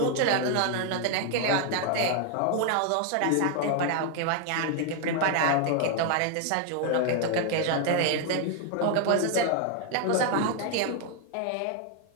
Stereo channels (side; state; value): both; different; correlation 0.00